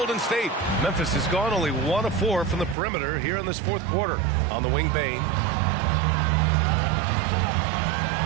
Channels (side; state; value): left; drops out; at 2.8 s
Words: State. Memphis has gone only 1 of 4 from the perimeter here in this fourth quarter. On the wing, Bain.